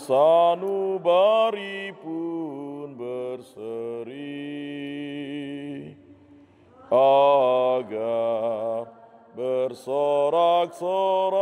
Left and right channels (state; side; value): identical; both; correlation 1.00